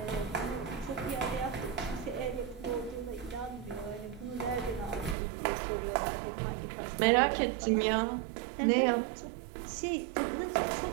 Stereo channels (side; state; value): left; drops out; at 5.2 s